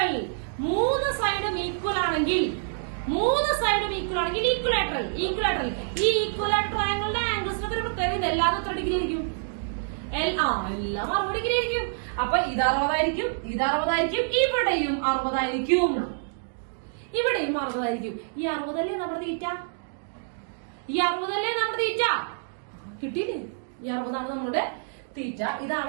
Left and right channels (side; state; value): left; silent; digital silence